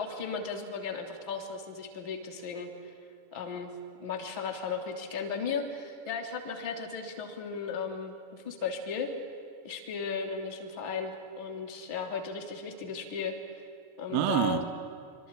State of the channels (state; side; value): late; left; 6.1 ms